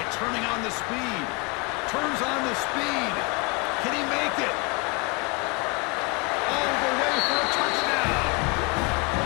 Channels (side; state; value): right; quieter; 28.6 dB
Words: turning on the speed. Turns on the speed. Can he make it? All the way for a touchdown.